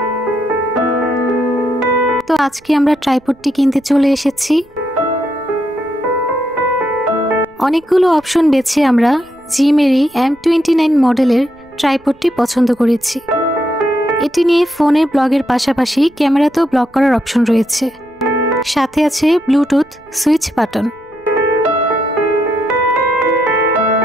তো আজকে আমরা ট্রাইপডটি কিনতে চলে এসেছি। অনেকগুলো অপশন বেছে আমরা জিমেরি M29 মডেলের ট্রাইপডটি পছন্দ করেছি। এটি নিয়ে ফোনে ব্লগের পাশাপাশি ক্যামেরাতেও ব্লগ করার অপশন রয়েছে, সাথে আছে ব্লুটুথ সুইচ বাটন।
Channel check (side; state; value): right; noise; rumble, 30 dB below the sound